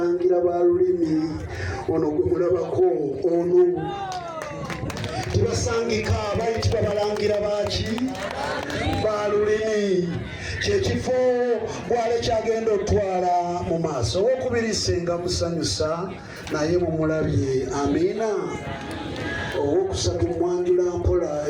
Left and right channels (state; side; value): identical; both; correlation 1.00